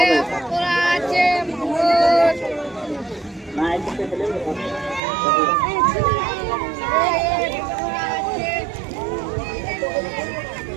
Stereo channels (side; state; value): left; drops out; at 5.0 s